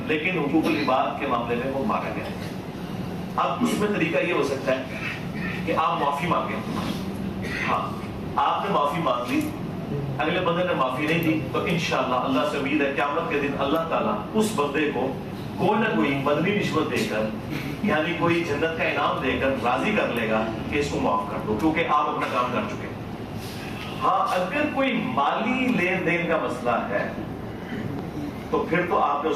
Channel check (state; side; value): identical; both; correlation 1.00